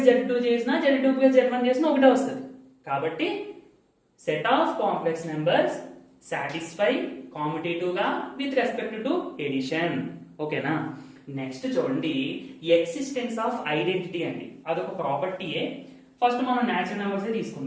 Z2 చేసినా Z2 ప్లస్ Z1 చేసినా ఒకటే వస్తుంది. కాబట్టి set of complex numbers satisfy commutative గా విత్ రెస్పెక్ట్ టు ఎడిషన్. ఓకేనా. నెక్స్ట్ చూడండి, ఎక్సిస్టెన్స్ ఆఫ్ ఐడెంటిటీ అండి, అదొక ప్రాపర్టీయే. ఫస్ట్ మనం న్యాచురల్ నెంబర్స్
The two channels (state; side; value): identical; both; correlation 1.00